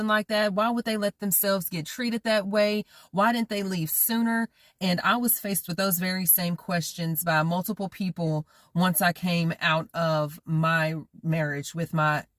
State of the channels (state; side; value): identical; both; correlation 1.00